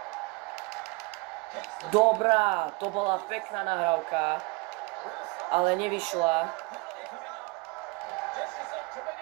Dobrá, to bola pekná nahrávka, ale nevyšla.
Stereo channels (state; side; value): quieter; left; 27.7 dB